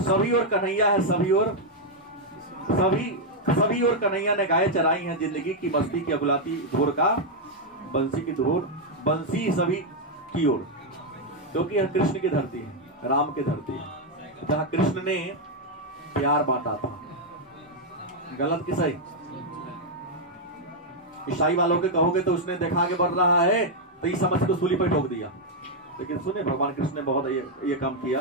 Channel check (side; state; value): both; normal; correlation -0.01